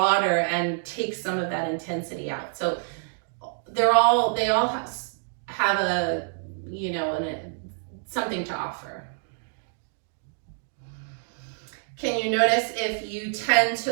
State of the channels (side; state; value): left; silent; 60 dB below the other